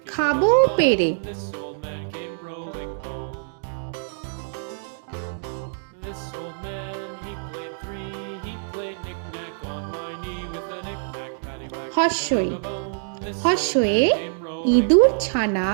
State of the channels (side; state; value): left; silent; digital silence